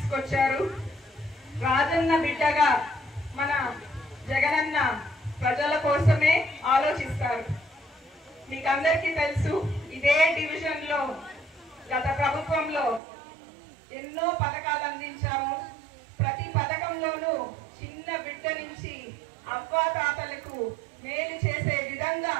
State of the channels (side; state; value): left; drops out; at 13.0 s